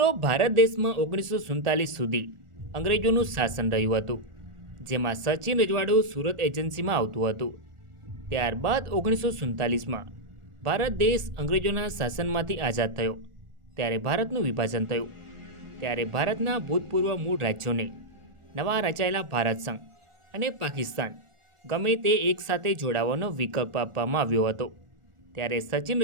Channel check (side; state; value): left; late; 1.4 ms